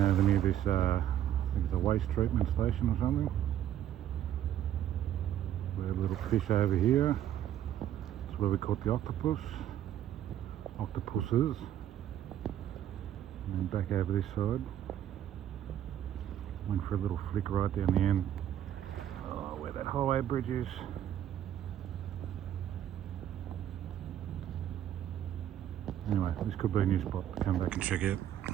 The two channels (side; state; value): left; quieter; 11.1 dB